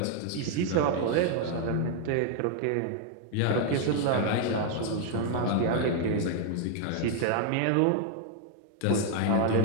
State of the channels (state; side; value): different; both; correlation 0.00